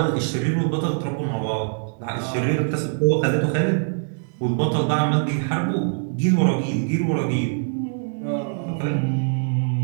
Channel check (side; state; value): left; silent; digital silence